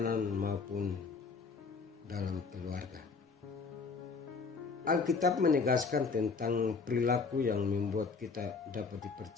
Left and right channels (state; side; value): quieter; right; 4.8 dB